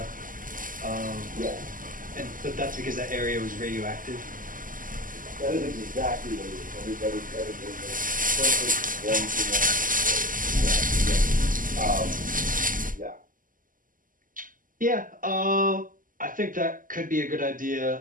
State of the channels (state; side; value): late; left; 0.40 ms